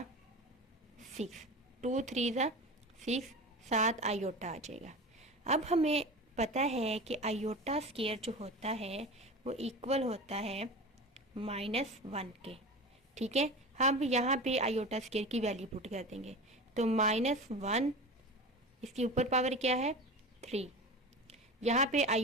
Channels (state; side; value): normal; both; correlation 0.31